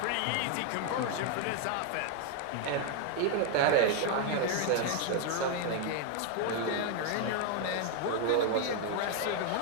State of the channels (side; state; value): both; different; correlation 0.01